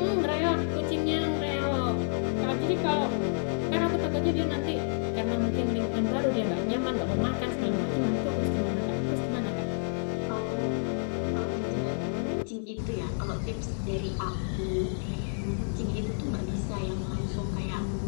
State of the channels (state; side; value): silent; right; digital silence